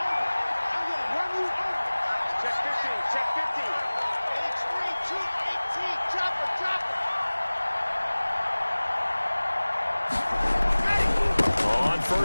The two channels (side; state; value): both; inverted; correlation -1.00